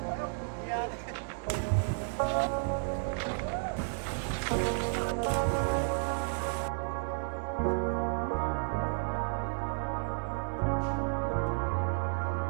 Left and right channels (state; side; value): silent; left; digital silence